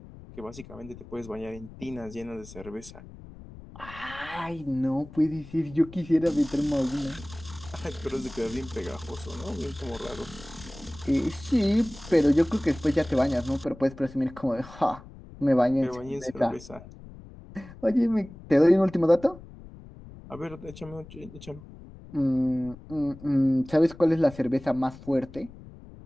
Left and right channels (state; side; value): noise; left; rumble, 17 dB below the sound